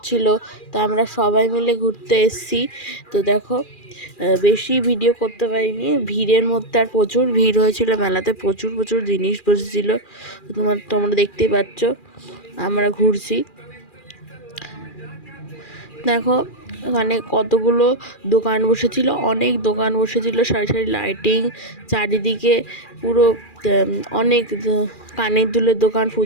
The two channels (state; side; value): late; right; 2.4 ms